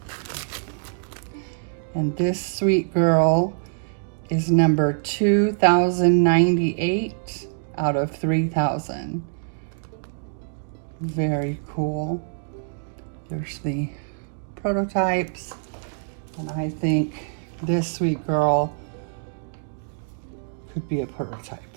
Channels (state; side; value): silent; left; digital silence